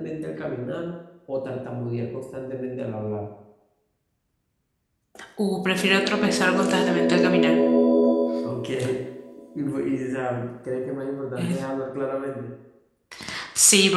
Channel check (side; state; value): both; identical; correlation 1.00